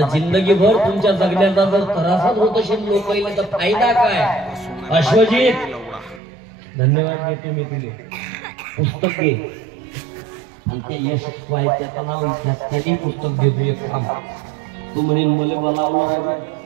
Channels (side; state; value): left; drops out; at 6.2 s